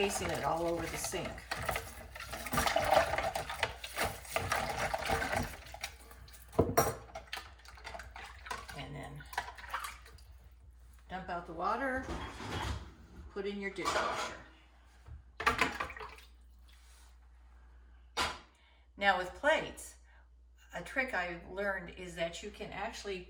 it all over the sink. put in your dishwasher. Now with plates, a trick I've learned is that you can actually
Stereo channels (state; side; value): identical; both; correlation 1.00